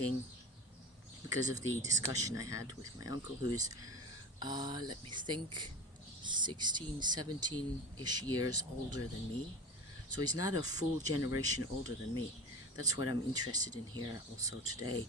because of the discussion I had with my uncle, who's, let me think, 16, 17-ish years older than me. So he's not a full generation older than me. That's what I'm interested in here also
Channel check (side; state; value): both; normal; correlation 0.33